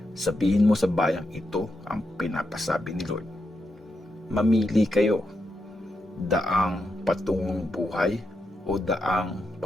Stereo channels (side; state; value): both; normal; correlation 0.84